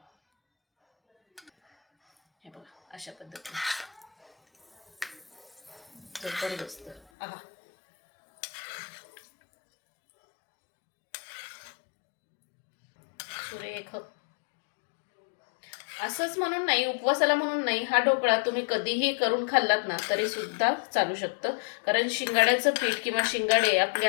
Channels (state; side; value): drops out; right; at 7.0 s